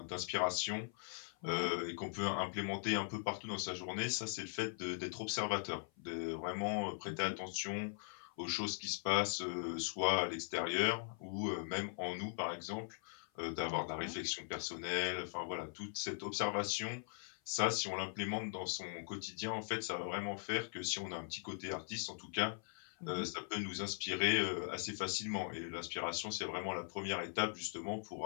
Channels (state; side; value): silent; right; 51 dB below the other